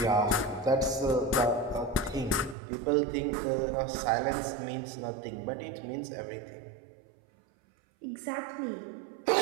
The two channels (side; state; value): left; drops out; at 2.6 s